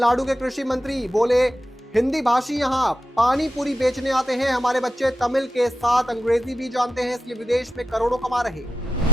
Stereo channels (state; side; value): normal; both; correlation 0.88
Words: के कृषि मंत्री बोले हिंदी भाषी यहाँ पानी पूरी बेचने आते हैं, हमारे बच्चे तमिल के साथ अंग्रेजी भी जानते हैं, इसलिए विदेश में करोड़ों कमा रहे।